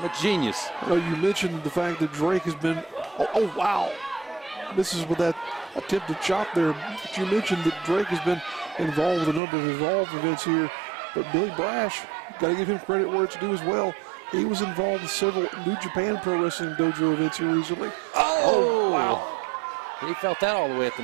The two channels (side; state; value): left; drops out; at 9.4 s